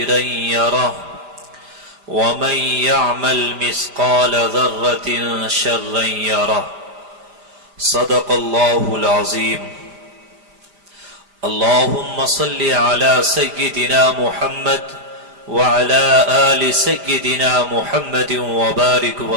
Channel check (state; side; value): late; left; 5.0 ms